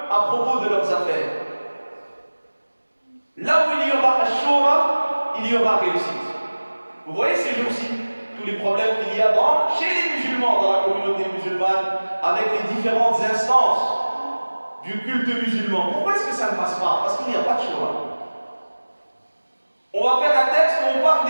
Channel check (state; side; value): inverted; both; correlation -1.00